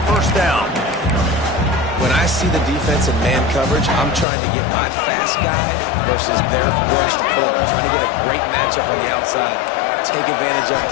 1st down. When I see the defense in man coverage, I'm trying to get my fast guy versus their rushed corner. Trying to get a great matchup on the outside. Take advantage of it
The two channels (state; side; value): drops out; right; at 4.2 s